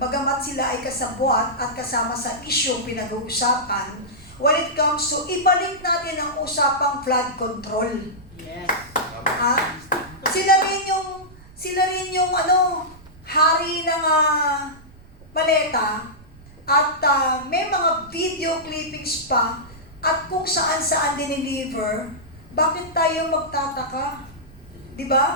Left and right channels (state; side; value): noise; right; rumble, 22 dB below the sound